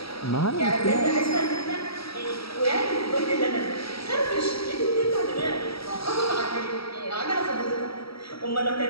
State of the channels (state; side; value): late; right; 0.76 ms